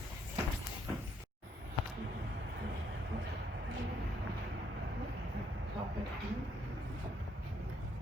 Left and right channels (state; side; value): normal; both; correlation 0.71